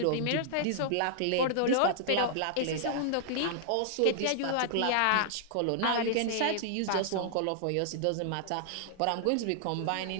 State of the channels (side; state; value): both; different; correlation -0.01